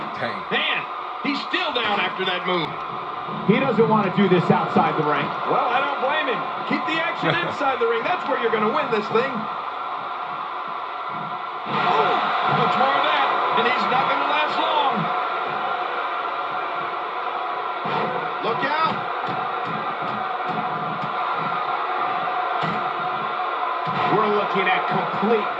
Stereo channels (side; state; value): both; identical; correlation 1.00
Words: Dang. Man, he's still down after that move. He doesn't want to do this outside the ring. Well, I don't blame him. Keep the action inside the ring. That's where you're going to win this thing. Oh, much more of that, and he's not going to last long. Look out. We're looking at complete